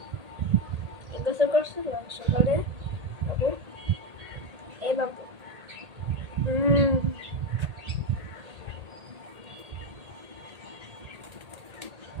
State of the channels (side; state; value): left; late; 1.8 ms